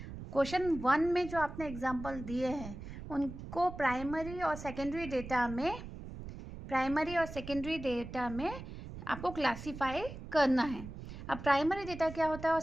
Question 1 में जो आपने example दिए हैं उनको primary और secondary data में आपको क्लासीफाई करना है. अब प्राइमरी डेटा क्या होता है और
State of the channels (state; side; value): noise; right; rumble, 11 dB below the sound